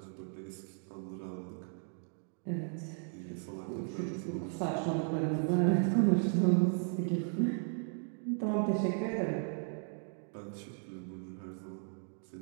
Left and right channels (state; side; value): silent; left; 54 dB below the other